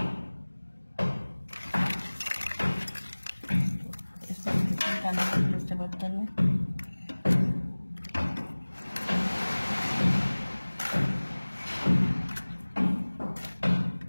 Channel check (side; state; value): both; inverted; correlation -1.00